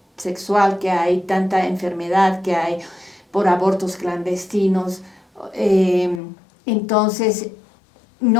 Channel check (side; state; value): right; drops out; at 6.2 s